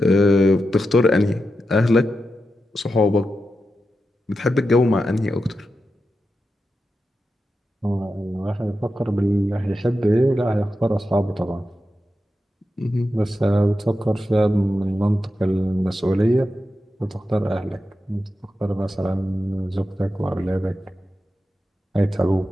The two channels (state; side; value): normal; both; correlation 0.89